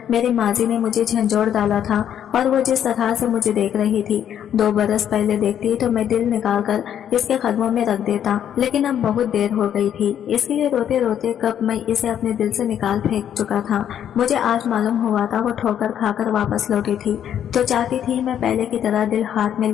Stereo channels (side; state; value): right; quieter; 9.7 dB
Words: मेरी माजी ने मुझे झंझोड़ डाला था और वो जिस तरह से मुझे देख रही थी 2 बरस पहले देखती तो मैं दिल निकाल कर इसके कदमों में रख देता, लेकिन अब बहुत देर हो गई थी। इसके लिए रोते रोते कब मैं इसे अपने दिल से निकाल फेंक चुका था। मुझे आज मालूम हुआ था वो ठोकर खाकर वापस लौटी थी तो चाहती थी मैं पहले की तरह दिल हाथ में